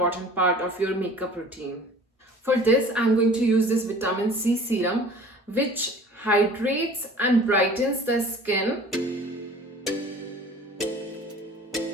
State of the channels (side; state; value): both; normal; correlation 0.46